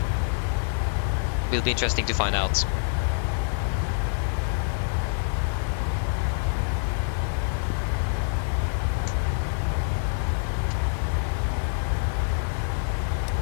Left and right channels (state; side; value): silent; right; 61 dB below the other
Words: Will be interesting to find out.